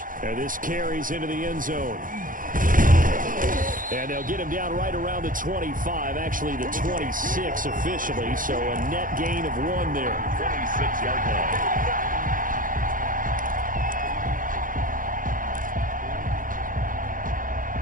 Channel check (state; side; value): late; left; 0.40 ms